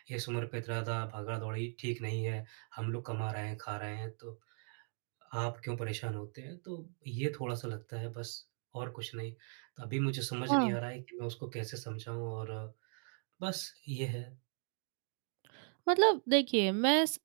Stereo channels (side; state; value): left; silent; 52 dB below the other